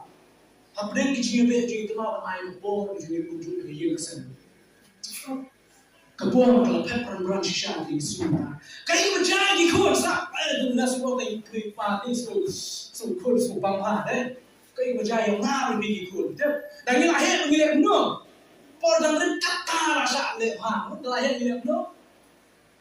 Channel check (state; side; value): identical; both; correlation 1.00